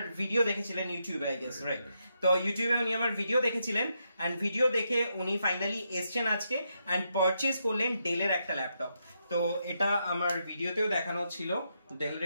ভিডিও দেখেছিলেন ইউটিউবে, আই গেস, রাইট? তো ইউটিউবে উনি আমার ভিডিও দেখেছিলেন এন্ড ভিডিও দেখে উনি ফাইনালি এসছেন আজকে এন্ড পারচেজ করলেন ডেলের একটা ল্যাপটপ। তো এটা আমার ভিডিওতেও দেখানো ছিল, ডেলের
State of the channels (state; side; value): inverted; both; correlation -0.81